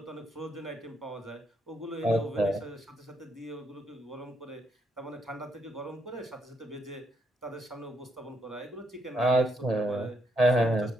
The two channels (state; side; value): normal; both; correlation 0.76